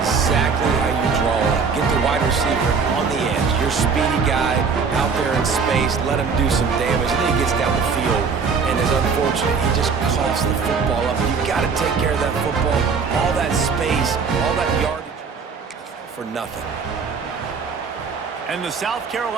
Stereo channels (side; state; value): left; quieter; 5.4 dB